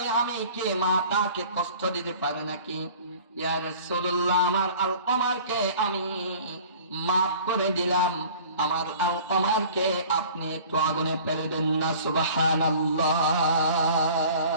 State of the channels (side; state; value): both; inverted; correlation -0.46